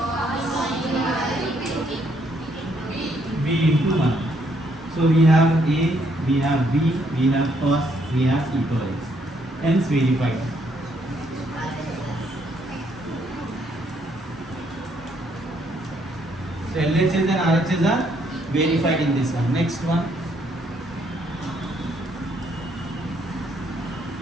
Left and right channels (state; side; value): normal; both; correlation 0.71